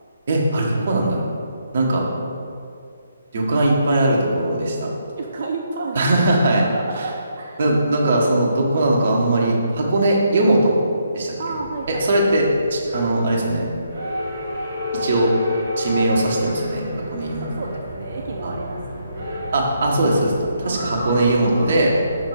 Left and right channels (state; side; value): inverted; both; correlation -0.75